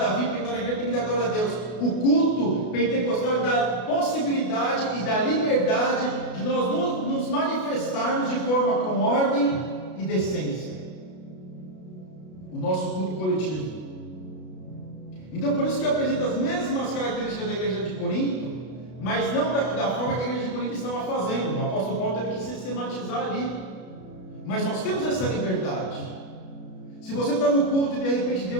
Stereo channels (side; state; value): right; late; 32 ms